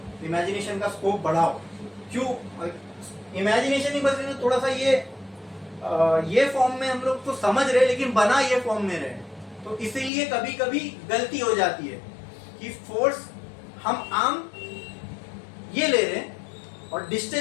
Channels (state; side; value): drops out; right; at 10.1 s